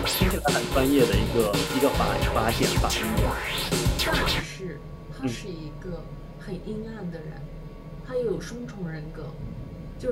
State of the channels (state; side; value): identical; both; correlation 1.00